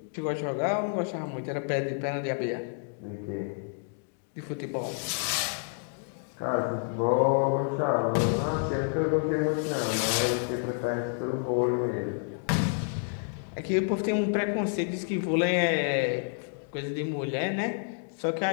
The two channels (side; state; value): right; silent; 58 dB below the other